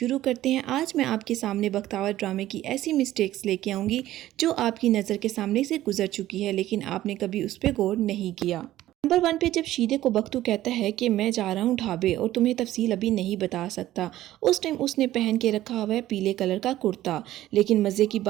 करते हैं। आज मैं आपके सामने बख्तावर ड्रामे की ऐसी मिस्टेक्स लेके आऊँगी जो आपकी नज़र के सामने से गुजर चुकी है लेकिन आपने कभी उस पर गौर नहीं किया। नंबर 1 पे जब शीदे को बख्तू कहता है कि मैं जा रहा हूँ ढाबे और तुम्हें तफसील अभी नहीं बता सकता, उस टाइम उसने पहन के रखा हुआ है पीले कलर का कुर्ता। लेकिन मज़े की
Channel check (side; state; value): left; quieter; 14.4 dB